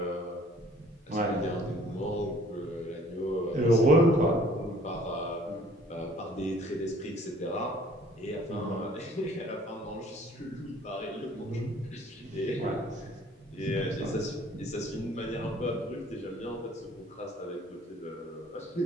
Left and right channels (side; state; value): both; normal; correlation 0.55